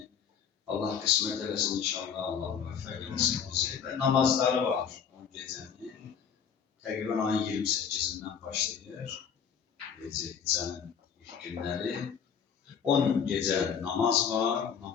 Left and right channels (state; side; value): quieter; right; 7.3 dB